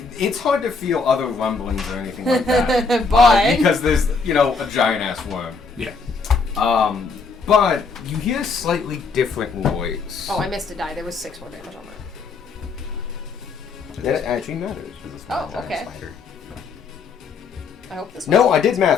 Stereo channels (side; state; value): right; quieter; 4.6 dB